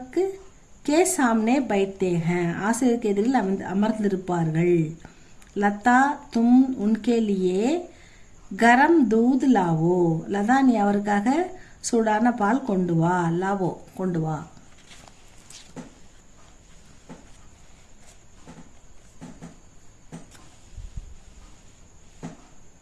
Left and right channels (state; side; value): identical; both; correlation 1.00